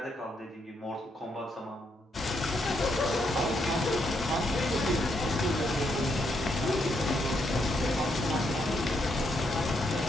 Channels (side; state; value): both; normal; correlation 0.77